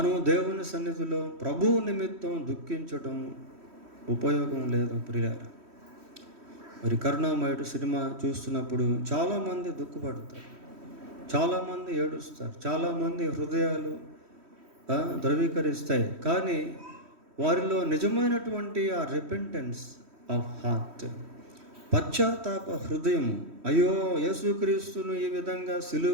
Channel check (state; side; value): late; left; 3.1 ms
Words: దేవుని సన్నిధిలో ప్రభువు నిమిత్తం దుఃఖించడం ఉపయోగం లేదు ప్రియులారా. మరి కరుణామయుడు సినిమా చూస్తున్నప్పుడు చాలామంది దుఃఖపడతారు, చాలామంది ఏడుస్తారు, చాలామంది హృదయాలు ధృవీకరిస్తాయి. కానీ వారిలో నిజమైనటువంటి ఆ రిపెంటెన్స్ ఆఫ్ హార్ట్, పశ్చాత్తాప హృదయం, అయ్యో యేసుక్రీస్తును ఈ విధంగా సిలువ